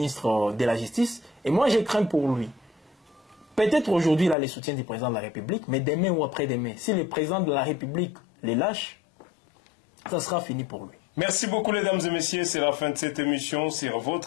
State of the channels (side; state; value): right; drops out; at 4.4 s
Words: de la Justice. Et moi, je crains pour lui. Peut-être aujourd'hui, il a le soutien du président de la République, mais demain ou après-demain, si le président de la République les lâche, ça sera fini pour lui. Merci beaucoup, mesdames et messieurs. C'est la fin de cette émission sur